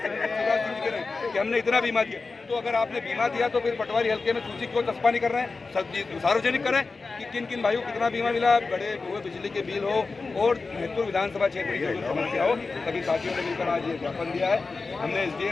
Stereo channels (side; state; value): right; quieter; 4.0 dB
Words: कि हमने इतना बीमा दिया, तो अगर आपने बीमा दिया तो फिर पटवारी हल्के में सूची क्यों चस्पा नहीं कर रहे हैं? सार्वजनिक करें कि किन किन भाइयों को कितना बीमा मिला, बड़े हुए बिजली के बिल हो और महतपुर विधानसभा क्षेत्र की जो समस्या हो। सभी साथियों ने मिलकर आज ये ज्ञापन दिया है। हमने